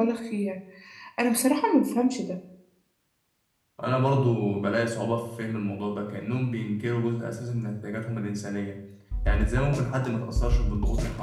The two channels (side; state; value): both; identical; correlation 1.00